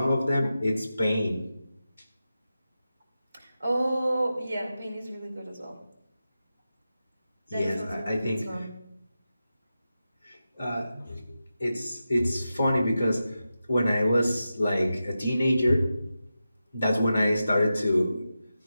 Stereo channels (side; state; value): both; inverted; correlation -0.91